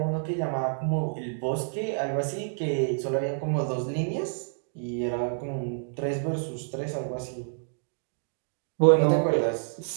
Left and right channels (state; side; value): silent; left; digital silence